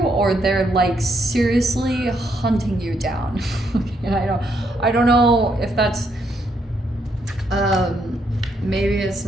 or they're like seriously hunting you down. And I don't know if that's maybe it's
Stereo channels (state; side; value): normal; both; correlation 0.75